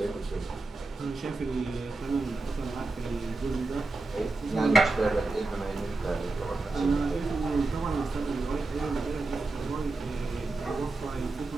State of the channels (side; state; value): left; quieter; 3.4 dB